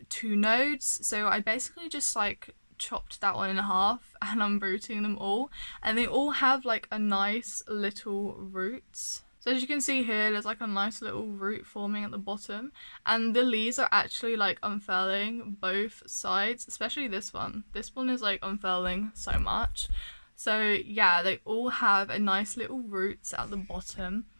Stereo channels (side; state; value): both; inverted; correlation -1.00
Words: 2 nodes. So I basically just like chopped that one in half and I'm rooting them all, and they all have like a nice little roots. So as you can see here, there's like a nice little root forming at the bottom, and the leaves are actually like unfurling both sides, especially this one. This one is like unfurling so much. So yeah, they all have a nice little roots at the bottom.